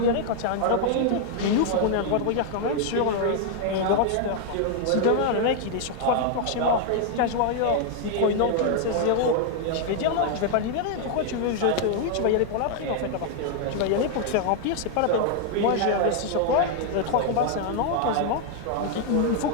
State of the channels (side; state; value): both; different; correlation 0.00